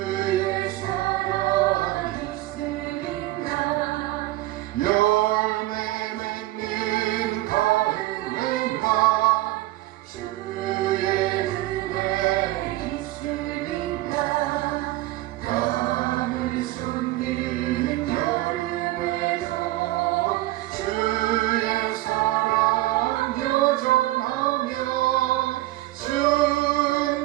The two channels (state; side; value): quieter; left; 17.4 dB